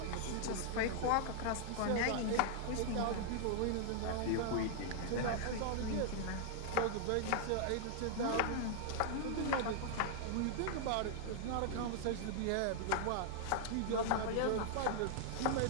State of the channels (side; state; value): both; different; correlation -0.01